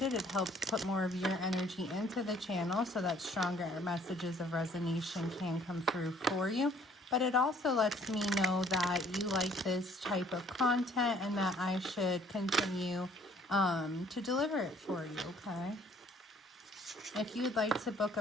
It helps put more of your energy into the channel so that stronger messages of resonation can come through for you. But it also lets me know that you like this type of content and that I should continue to deliver it for you, okay? If you would like to book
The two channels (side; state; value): both; normal; correlation 0.59